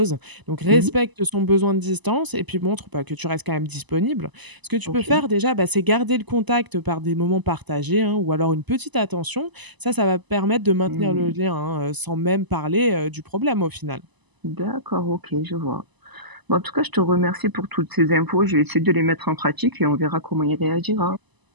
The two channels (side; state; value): left; late; 1.0 ms